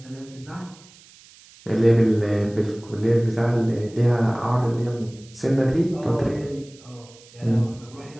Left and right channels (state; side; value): noise; right; hiss, 24 dB below the sound